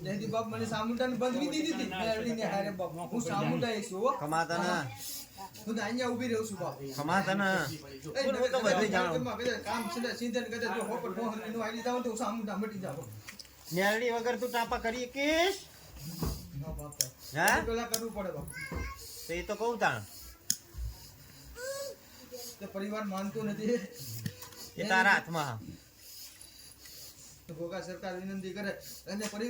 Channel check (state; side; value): identical; both; correlation 1.00